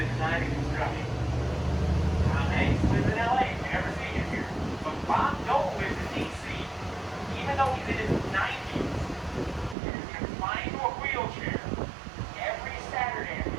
design and construction. Tom Hanks lives in LA, if you never seen him here. But Bob Dole lives in DC. Even though he's in his 90s and is confined to a wheelchair, every Saturday, if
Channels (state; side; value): drops out; left; at 9.8 s